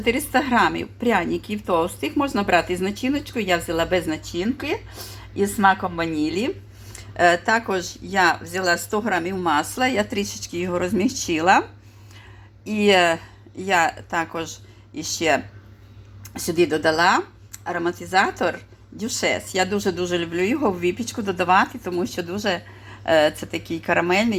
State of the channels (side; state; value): both; identical; correlation 1.00